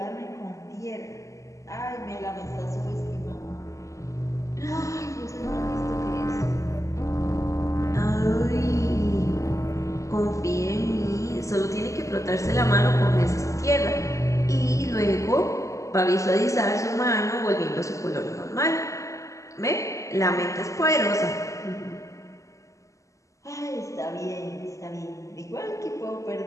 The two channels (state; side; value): late; right; 0.15 ms